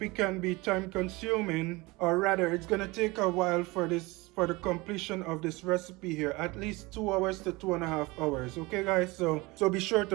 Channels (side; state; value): left; quieter; 23.3 dB